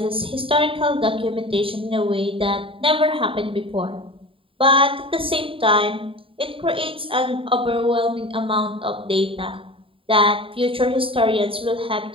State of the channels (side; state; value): left; late; 0.26 ms